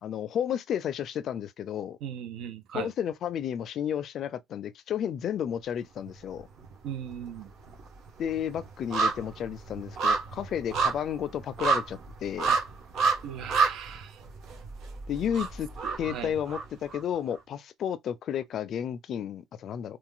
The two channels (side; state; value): both; normal; correlation 0.62